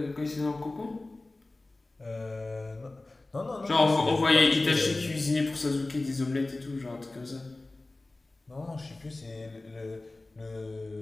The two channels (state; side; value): quieter; right; 3.0 dB